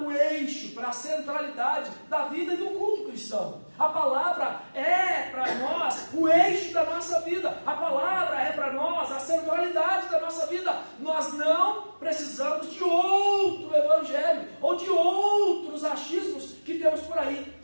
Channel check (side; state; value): both; inverted; correlation -1.00